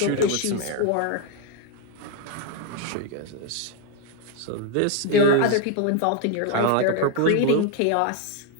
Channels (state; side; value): different; both; correlation 0.01